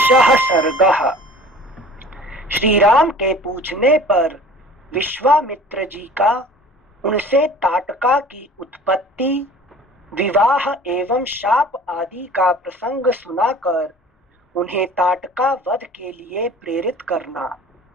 सर्गः। श्री राम के पूछने पर विश्वामित्र जी का उनसे ताटका की उत्पत्ति, विवाह एवं शाप आदि का प्रसंग सुनाकर उन्हें ताटका वध के लिए प्रेरित करना।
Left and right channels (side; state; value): both; normal; correlation 0.45